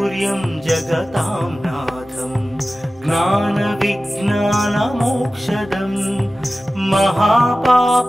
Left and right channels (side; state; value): both; normal; correlation 0.96